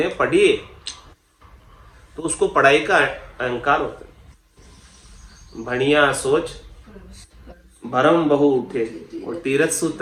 पढ़ी है, तो उसको पढ़ाई का अहंकार होता है। भणिया सोच भरम बहु उठे, और तीरथ सु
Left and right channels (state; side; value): identical; both; correlation 1.00